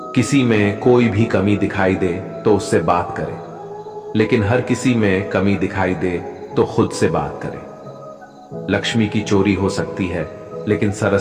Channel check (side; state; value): both; identical; correlation 1.00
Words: किसी में कोई भी कमी दिखाई दे तो उससे बात करें, लेकिन हर किसी में कमी दिखाई दे तो खुद से बात करें। लक्ष्मी की चोरी हो सकती है, लेकिन